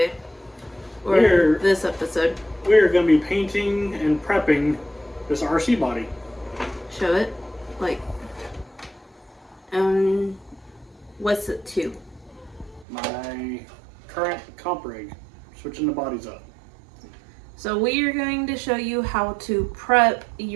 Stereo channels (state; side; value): drops out; left; at 12.9 s